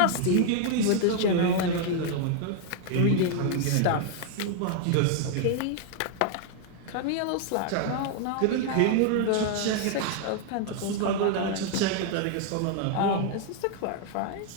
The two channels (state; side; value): different; both; correlation 0.00